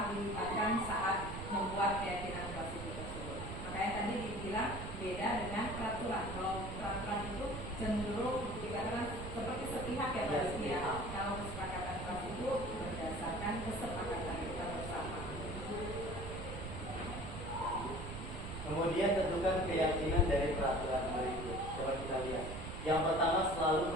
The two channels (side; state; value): right; noise; rumble, 8 dB below the sound